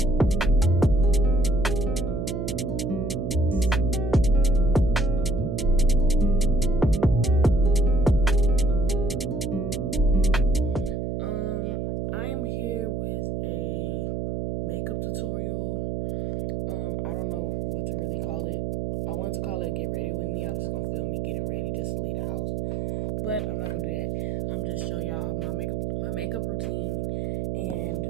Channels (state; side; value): noise; right; hum, 2 dB below the sound